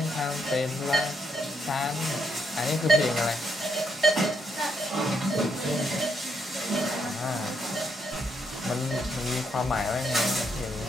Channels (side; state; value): both; normal; correlation 0.76